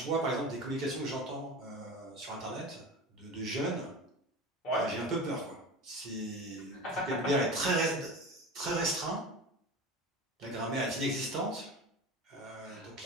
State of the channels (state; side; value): normal; both; correlation 0.31